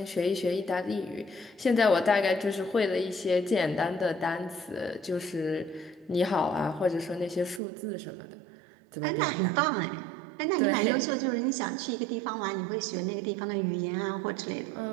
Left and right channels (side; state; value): left; drops out; at 7.6 s